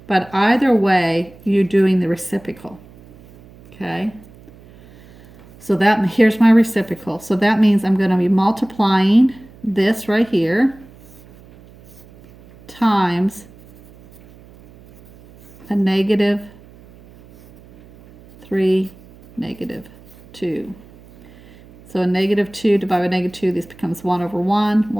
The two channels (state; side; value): noise; right; hum, 24 dB below the sound